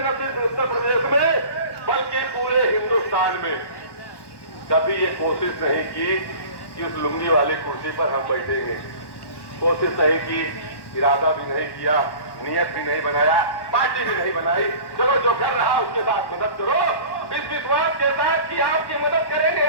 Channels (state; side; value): late; right; 1.1 ms